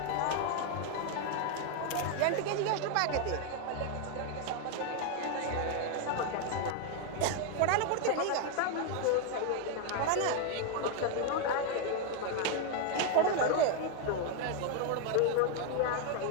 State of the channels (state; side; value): different; both; correlation 0.01